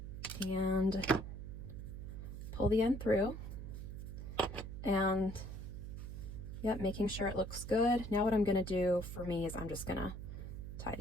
and pull the end through, and yep, making sure it looks good. Now what I'm going to do for me is I'm just going to tie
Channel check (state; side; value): noise; right; hum, 8 dB below the sound